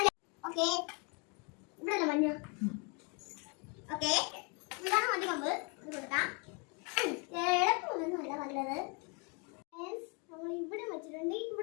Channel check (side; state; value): right; quieter; 33.9 dB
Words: ഓക്കെ, ഇവിടെ മഞ്ഞ. ഓക്കെ, ഇതാണ് മഞ്ഞ കമ്പ്. ഇത് കൊടുക്കാം. ഇടപ്പൊന്നുമല്ല നല്ലത്. നമ്മൾ ഇവിടെ വെച്ചിട്ടുണ്ട്,